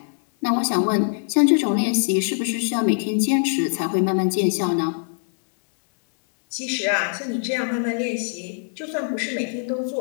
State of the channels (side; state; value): right; silent; 64 dB below the other